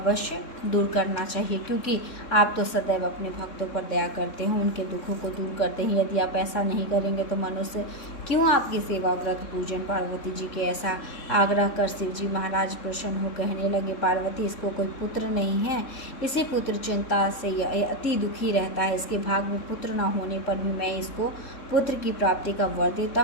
दूर करना चाहिए, क्योंकि आप तो सदैव अपने भक्तों पर दया करते हैं, उनके दुखों को दूर करते हैं। यदि आप ऐसा नहीं करेंगे तो मनुष्य क्यों आपकी सेवा व्रत पूजन? पार्वती जी के ऐसा आग्रह कर शिव जी महाराज प्रसन्न हो कहने लगे, पार्वती इसको कोई पुत्र नहीं है, इसी पुत्र चिंता से यह अति दुखी रहता है। इसके भाग में पुत्र न होने पर भी मैं इसको पुत्र की प्राप्ति का वर देता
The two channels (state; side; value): late; right; 3.6 ms